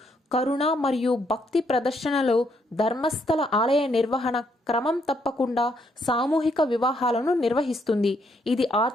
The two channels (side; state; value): both; normal; correlation 0.73